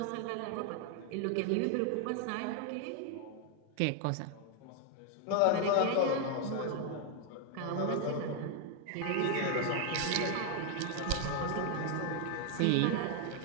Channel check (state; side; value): different; both; correlation 0.00